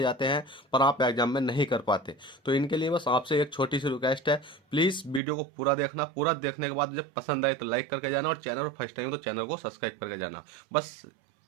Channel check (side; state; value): left; drops out; at 5.2 s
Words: जाते हैं पर आप एग्जाम में नहीं कर पाते। तो इनके लिए बस आपसे एक छोटी सी रिक्वेस्ट है, प्लीज वीडियो को पूरा देखना। पूरा देखने के बाद जब पसंद आए तो लाइक करके जाना, और चैनल फर्स्ट टाइम तो चैनल को सब्सक्राइब करके जाना। बस